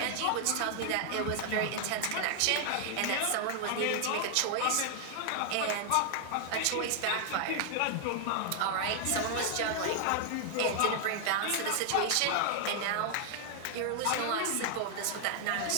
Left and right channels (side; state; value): both; different; correlation 0.00